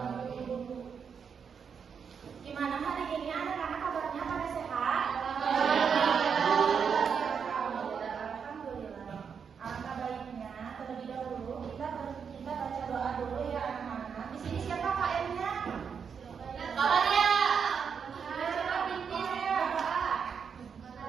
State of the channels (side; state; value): left; quieter; 6.6 dB